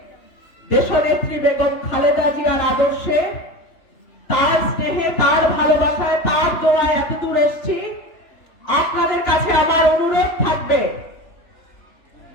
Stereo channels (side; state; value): right; late; 3.3 ms